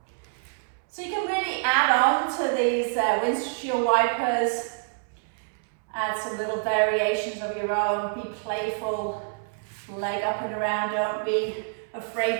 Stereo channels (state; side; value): silent; left; 60 dB below the other